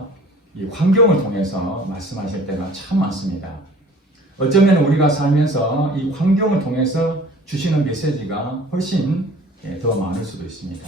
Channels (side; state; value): both; normal; correlation 0.49